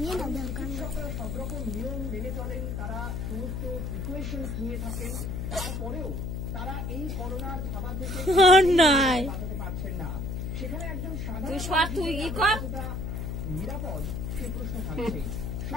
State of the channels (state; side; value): noise; left; hum, 3 dB below the sound